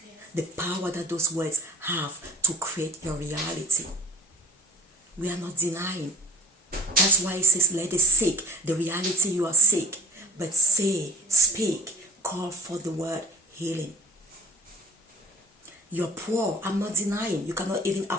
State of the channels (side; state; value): both; normal; correlation 0.41